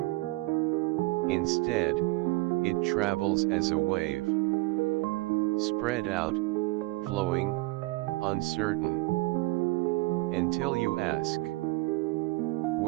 Instead, it travels as a wave, spread out, flowing, uncertain, until you ask,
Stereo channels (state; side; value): quieter; left; 22.4 dB